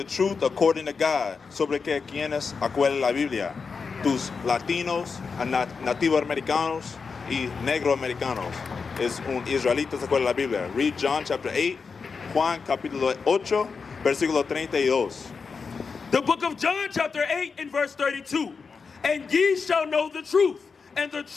truth according to God sobre que quienes acuerdan la Biblia. Tus latinos, nativos americanos y negro americanos. Es un israelita se acuerda la Biblia. Read John chapter 8, Juan capítulo 8, versículo 32. The book of John chapter 8 and verse 32. And ye shall know the truth, and the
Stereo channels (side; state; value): right; quieter; 5.2 dB